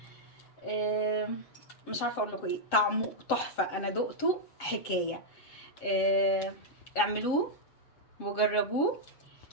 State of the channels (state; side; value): late; right; 7.6 ms